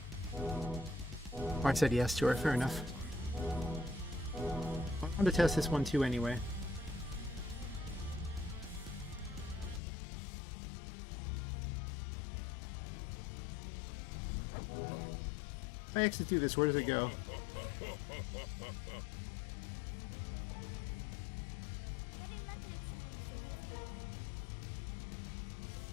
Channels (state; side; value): drops out; right; at 9.8 s